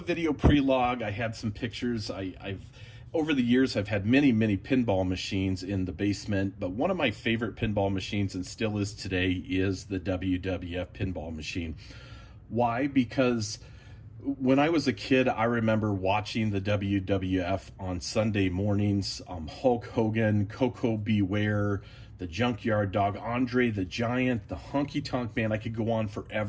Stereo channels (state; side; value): identical; both; correlation 1.00